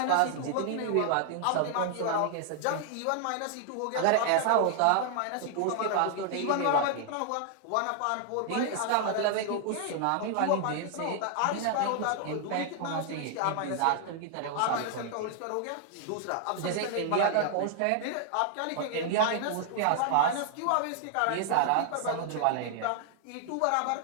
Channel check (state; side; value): different; both; correlation 0.00